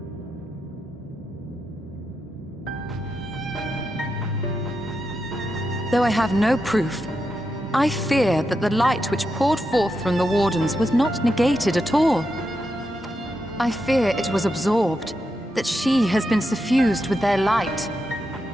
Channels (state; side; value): normal; both; correlation 0.86